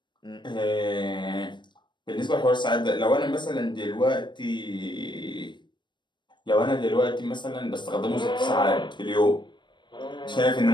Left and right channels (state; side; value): late; right; 0.22 ms